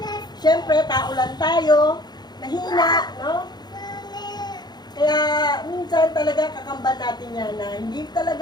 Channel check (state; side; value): late; right; 0.20 ms